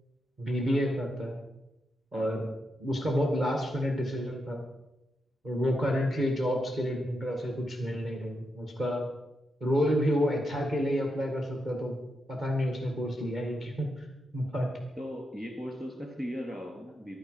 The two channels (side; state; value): both; normal; correlation 0.84